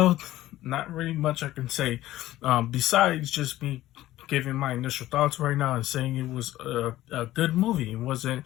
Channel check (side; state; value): right; quieter; 15.1 dB